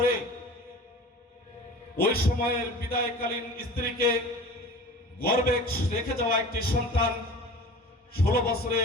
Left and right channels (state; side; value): normal; both; correlation 0.39